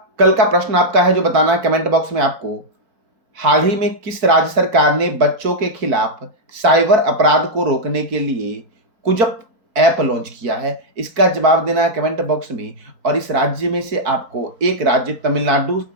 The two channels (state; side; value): late; left; 4.5 ms